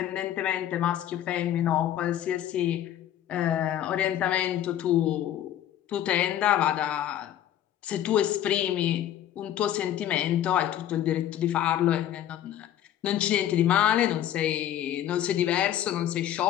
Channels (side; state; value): right; quieter; 11.4 dB